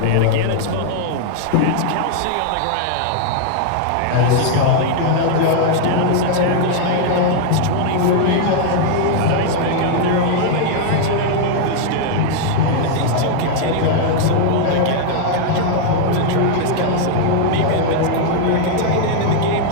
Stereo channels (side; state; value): both; different; correlation -0.01